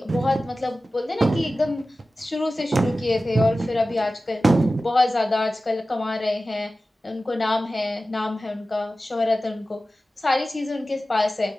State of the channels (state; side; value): normal; both; correlation 0.95